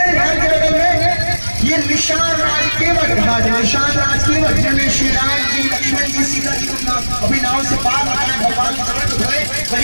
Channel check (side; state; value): both; inverted; correlation -1.00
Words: घाट के बगल में ये निशान राज केवट घाट है। निशान राज केवट, जिनमें श्री राम जी, लक्ष्मण जी, सीता जी को अभी नाव से पार लगाए, भगवान चरण धोए,